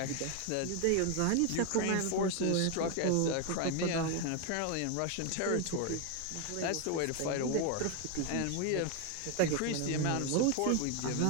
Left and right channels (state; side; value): different; both; correlation 0.01